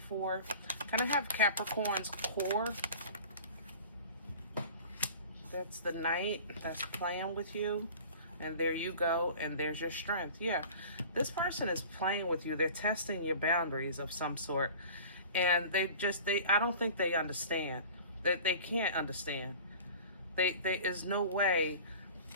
Kind of have Capricorn's core. That's the Knight that's playing with you. And there you go. And there's your strength. Yeah, this person is playing with you. They're testing your boundaries of some sort. And I don't think they understand. They can't understand. There is no way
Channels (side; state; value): both; inverted; correlation -0.41